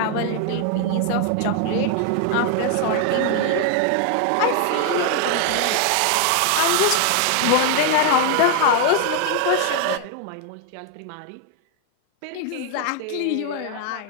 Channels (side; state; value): both; different; correlation 0.00